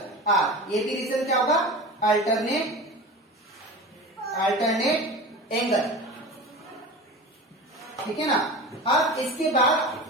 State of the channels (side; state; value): both; normal; correlation 0.32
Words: R। ये भी रीजन क्या होगा? Alternate angle. ठीक है ना। अब इसके